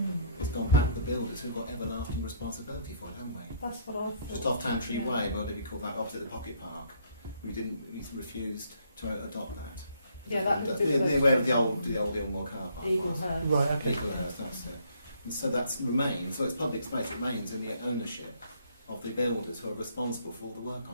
it's gone back to the builders who've got everlasting responsibility for it, haven't we? That's what I thought. Just off Tantry Yeah. Way, whatever you call that, opposite the Pocket Park, we refused to adopt that. Yeah, that That's would be near where the old Ilmore car park was. Eaglehurst. Right, okay. Eaglehurst, that's it. And so that remains, so it's public space, it remains in the ownership of the builders who are responsible for all the work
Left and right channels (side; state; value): both; inverted; correlation -0.65